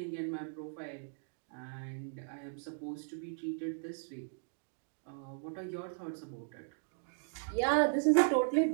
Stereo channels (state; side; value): silent; left; digital silence